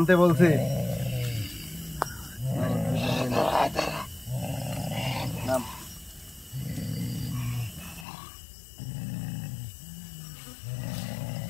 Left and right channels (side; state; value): right; drops out; at 8.1 s